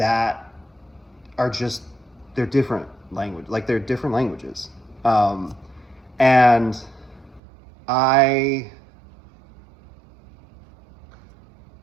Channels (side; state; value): left; drops out; at 7.4 s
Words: are just, they're different language, like they're different languages. And